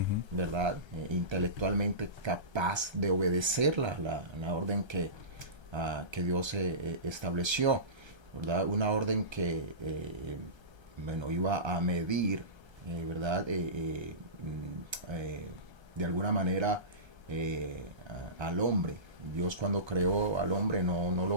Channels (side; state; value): left; late; 1.3 ms